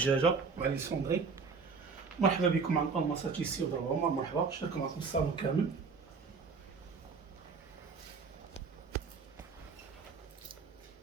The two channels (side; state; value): left; quieter; 5.1 dB